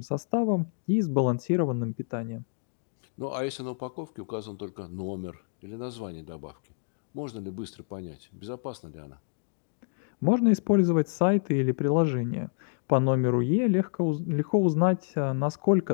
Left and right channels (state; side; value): silent; right; 59 dB below the other